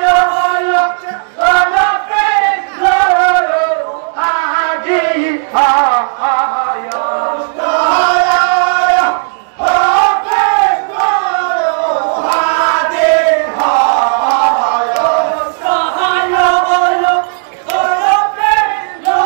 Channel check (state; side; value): silent; left; digital silence